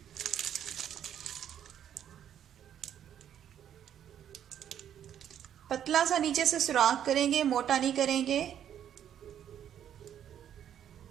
पतला सा नीचे से सुराख करेंगे, मोटा नहीं करेंगे।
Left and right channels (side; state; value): left; quieter; 9.9 dB